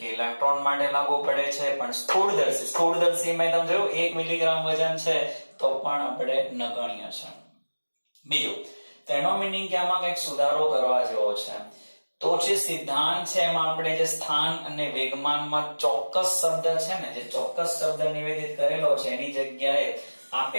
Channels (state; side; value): inverted; both; correlation -1.00